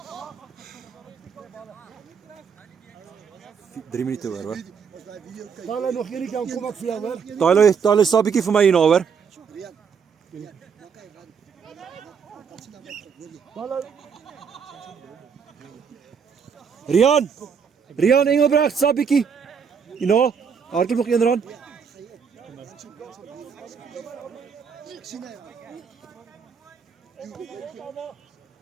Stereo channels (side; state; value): left; quieter; 6.5 dB